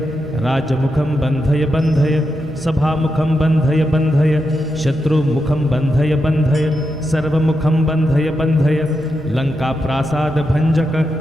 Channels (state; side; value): normal; both; correlation 0.86